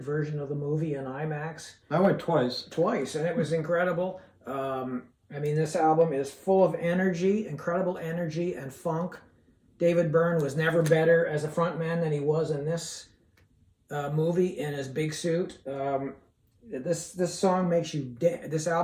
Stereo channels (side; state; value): both; identical; correlation 1.00